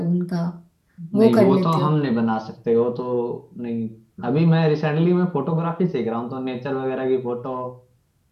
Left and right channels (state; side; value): identical; both; correlation 1.00